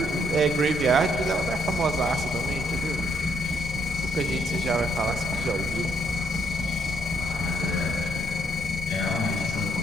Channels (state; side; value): normal; both; correlation 0.71